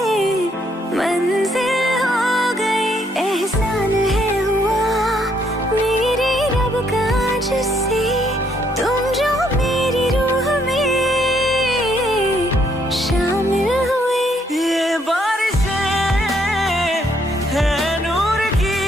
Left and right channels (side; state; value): both; normal; correlation 0.71